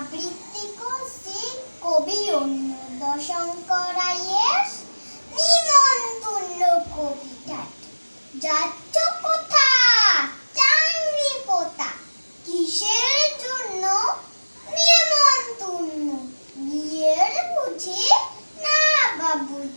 করছি কবি অন্নদাশঙ্কর রায়ের নিমন্ত্রণ কবিতা। যাচ্ছ কোথা চাংরি পোতা, কিসের জন্য নিমন্ত্রণ? বিয়ের বুঝি না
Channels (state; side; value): inverted; both; correlation -1.00